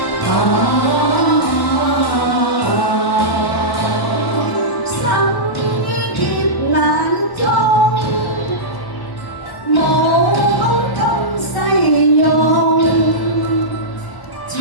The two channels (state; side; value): late; right; 1.0 ms